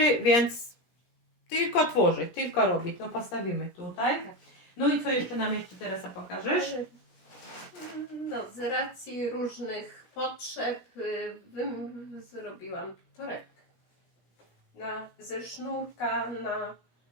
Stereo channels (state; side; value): late; right; 17 ms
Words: więc tylko tworzyć, tylko robić. No postawimy tutaj. No i co jeszcze nam jeszcze Teresa pokażesz? No, z racji różnych potrzeb zrobiłam torebkę. Ze sznurka na...